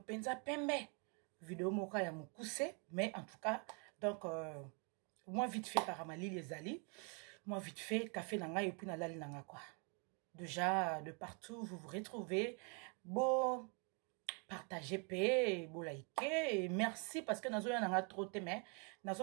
pembe. Vidéo moka ya moukousse, mais en tout cas, donc, moi vite fait karamali les ali, moi vite fait café nanga et puis nalali nanga quoi. Déjà, de partout, vous vous retrouvez. Bon, partagez, paix, bon, likez, et merci parce que nous avons trop de mais nous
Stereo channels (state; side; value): quieter; left; 36.2 dB